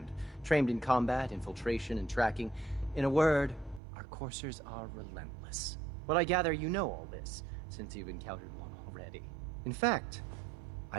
trained in combat, infiltration, and tracking. In a word, our Coursers are relentless. But I gather you know all this, since you've encountered one already. In fact,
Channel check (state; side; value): drops out; left; at 3.8 s